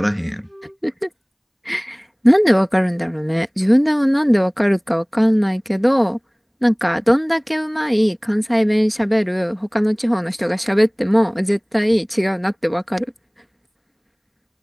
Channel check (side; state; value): both; identical; correlation 1.00